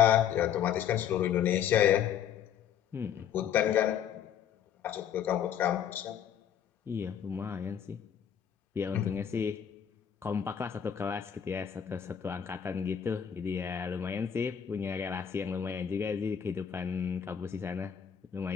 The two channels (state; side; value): quieter; right; 8.9 dB